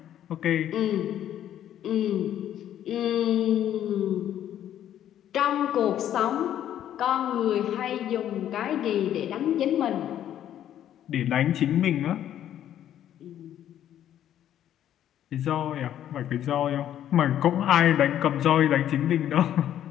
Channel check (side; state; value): right; quieter; 11.0 dB